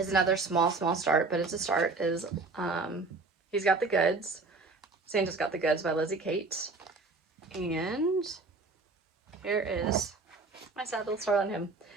another small start, but it's a start, is He's Got the Goods. Santa's Got the Goods by Lizzie Kate. And here is my sad little start on him.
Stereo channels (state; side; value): quieter; left; 3.9 dB